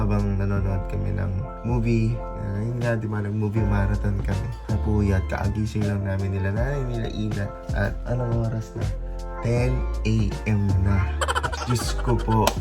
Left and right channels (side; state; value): both; identical; correlation 1.00